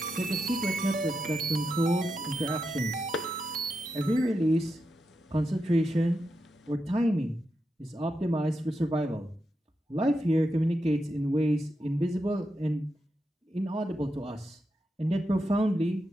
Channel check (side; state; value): both; normal; correlation 0.86